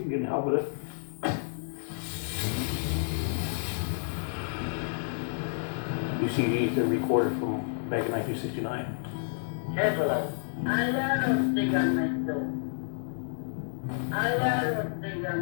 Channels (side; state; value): right; silent; digital silence